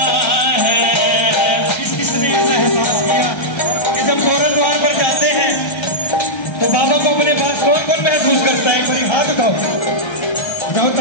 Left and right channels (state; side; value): late; right; 1.3 ms